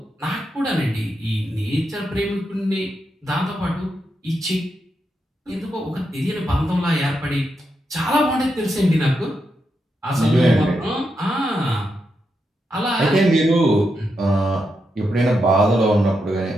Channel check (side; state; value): both; normal; correlation 0.84